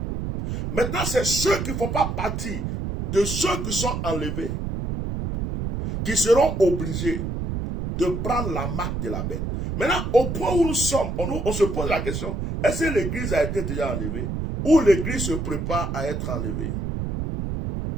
Maintenant, c'est ceux qui ne font pas partie de ceux qui sont enlevés qui seront obligés de prendre la marque de la bête. Maintenant, au point où nous sommes, on se pose la question, est-ce que l'église a été déjà enlevée ou l'église se prépare à être enlevée?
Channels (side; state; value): right; noise; rumble, 3 dB below the sound